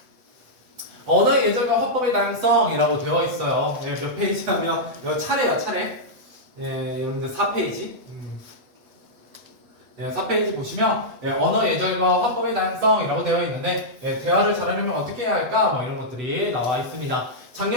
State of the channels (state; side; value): late; left; 8.1 ms